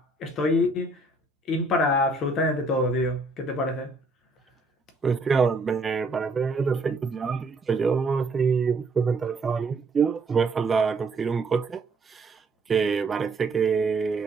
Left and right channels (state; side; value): quieter; left; 3.1 dB